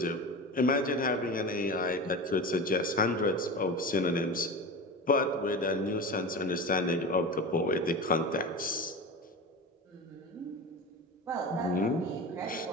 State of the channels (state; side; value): normal; both; correlation 0.28